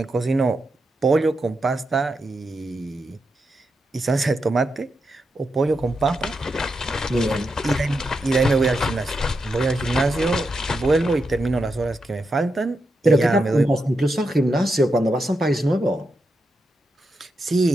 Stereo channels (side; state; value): both; normal; correlation 0.86